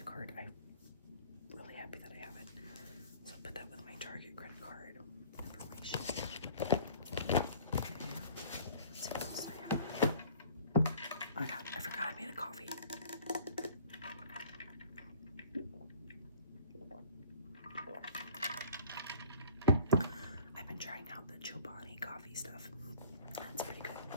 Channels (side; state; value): both; inverted; correlation -0.51